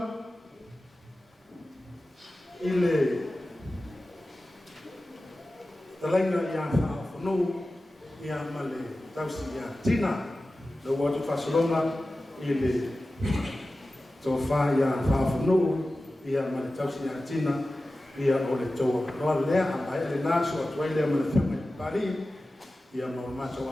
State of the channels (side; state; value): both; normal; correlation 0.95